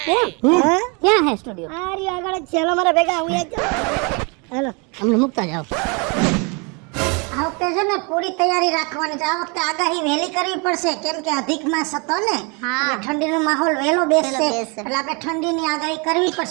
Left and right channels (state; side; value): quieter; left; 31.8 dB